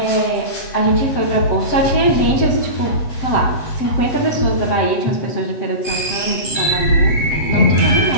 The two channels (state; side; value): late; right; 7.6 ms